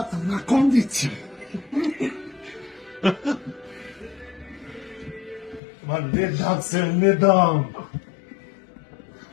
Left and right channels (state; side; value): drops out; right; at 5.6 s